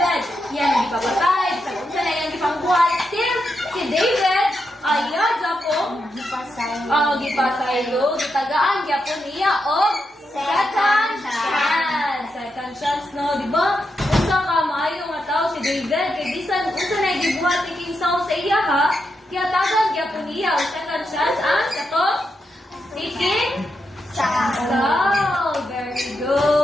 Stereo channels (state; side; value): normal; both; correlation 0.85